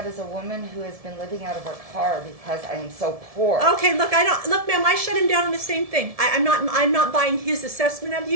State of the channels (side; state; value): left; late; 1.7 ms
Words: is a woman who has been living out of her car because I am so poor. Okay, look, look, ma'am, I shut him down on the same thing. I'm not buying his assessment of